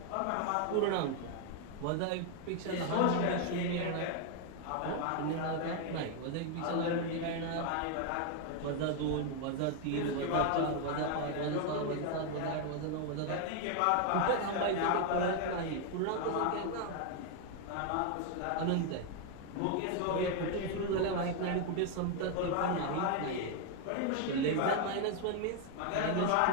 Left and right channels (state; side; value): different; both; correlation 0.01